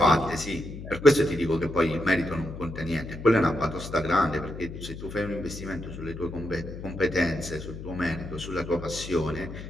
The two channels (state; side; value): noise; left; hum, 10 dB below the sound